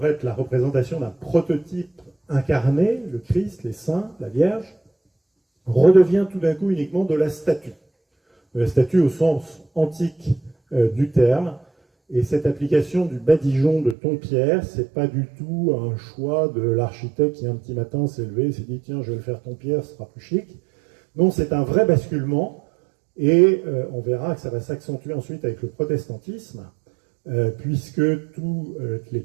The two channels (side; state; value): left; drops out; at 14.0 s